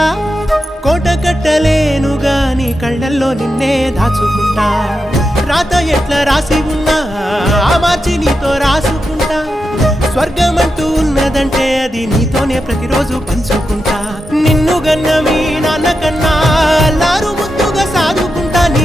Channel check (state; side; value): normal; both; correlation 0.88